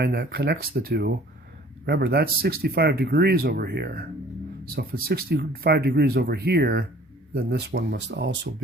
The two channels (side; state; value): both; normal; correlation 0.52